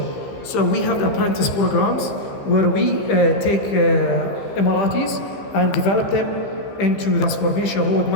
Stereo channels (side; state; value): right; late; 15 ms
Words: So we have the apprentice programs where we take Emiratis and develop them into the transformation